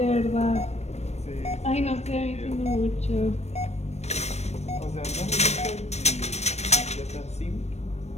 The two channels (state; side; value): late; right; 0.32 ms